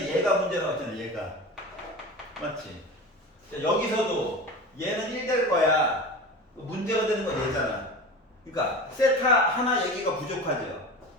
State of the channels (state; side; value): normal; both; correlation 0.31